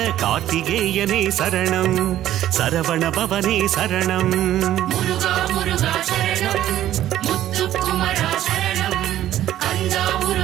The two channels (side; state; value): left; quieter; 12.7 dB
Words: கார்த்திகேயனே சரணம் சரவண பவனே சரணம் முருகா முருகா சரணம் முத்துக்குமரா சரணம் கந்தா